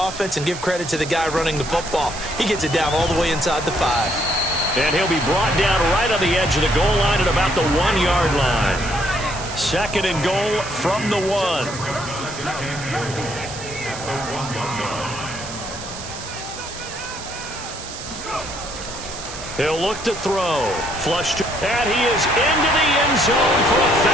and give credit to the guy running the football. He gets it down all the way inside the 5. And he'll be brought down right on the edge of the goal line at about the 1-yard line. 2nd and goal from the 1. He'll look to throw. Flush. And he is into the end zone for a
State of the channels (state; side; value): noise; right; hiss, 11 dB below the sound